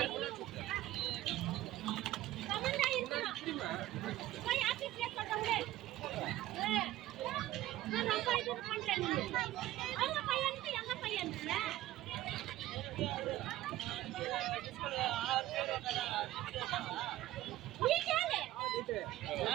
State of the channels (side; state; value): left; quieter; 15.2 dB